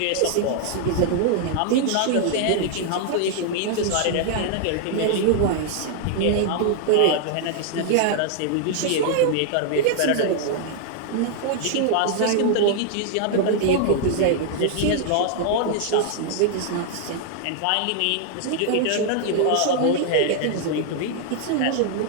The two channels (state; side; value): different; both; correlation 0.00